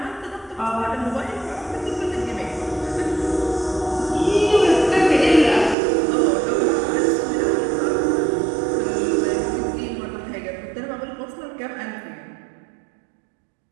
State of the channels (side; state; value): left; drops out; at 5.8 s